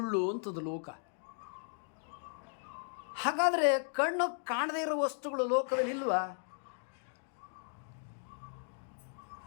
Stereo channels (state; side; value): silent; right; digital silence